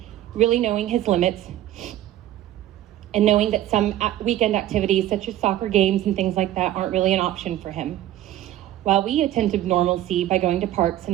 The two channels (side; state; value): left; quieter; 13.3 dB